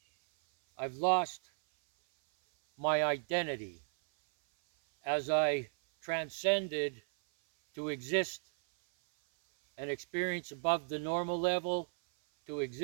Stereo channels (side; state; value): left; silent; 55 dB below the other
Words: I've lost my identity as I transcended to exist and experience above the normal level, to